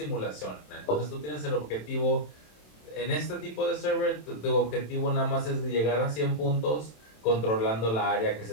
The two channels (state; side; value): late; right; 27 ms